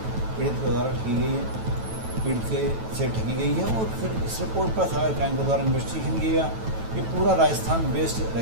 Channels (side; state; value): left; late; 9.1 ms